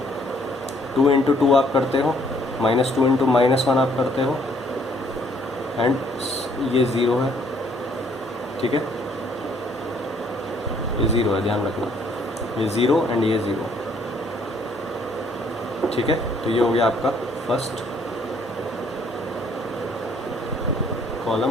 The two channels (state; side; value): normal; both; correlation 0.64